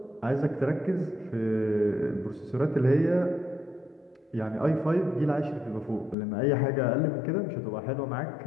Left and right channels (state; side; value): drops out; right; at 6.2 s